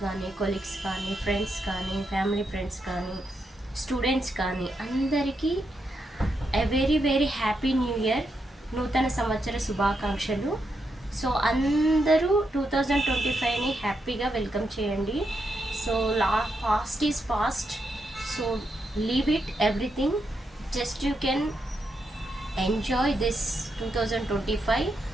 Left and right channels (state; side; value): normal; both; correlation 0.83